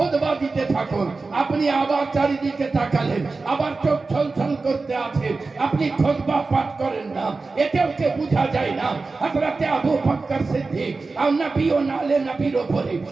দিতে থাকুন, আপনি আবার চারিদিকে তাকালেন, আবার চোখ ছলছল করতে আছে, আপনি খুতবা পাঠ করেন না, এতেও কে বোঝা যায় না হযরতে আবু বকর সিদ্দিক আর নবী ও নালে নবীর উপরে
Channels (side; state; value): left; quieter; 3.9 dB